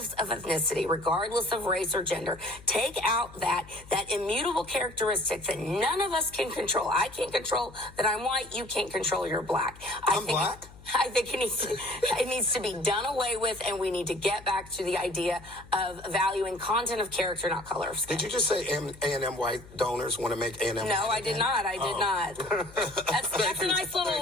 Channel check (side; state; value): left; noise; hum, 20 dB below the sound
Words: of ethnicity, regardless of race or gender. Take out that immutable characteristic that none of us can control. I can't control that I'm white. You can't control you're black. I'm black? I think it needs to be done away with, and we need to get back to the idea of valuing content of character, not color of skin. Did you just say A&M white donors want to make A&M? No, I did not. I did not. That's a nice little